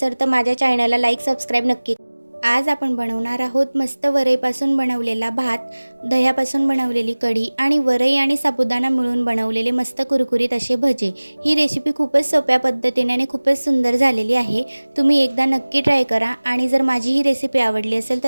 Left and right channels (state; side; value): inverted; both; correlation -1.00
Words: तर माझ्या चॅनलला लाईक सबस्क्राईब नक्की आज आपण बनवणार आहोत मस्त वरईपासून बनवलेला भात, दह्यापासून बनवलेली कढी आणि वरई आणि साबुदाणा मिळून बनवलेले मस्त कुरकुरीत असे भजे। ही रेसिपी खूपच सोप्या पद्धतीने आणि खूपच सुंदर झालेली आहे। तुम्ही एकदा नक्की ट्राय करा आणि जर माझी ही रेसिपी आवडली असेल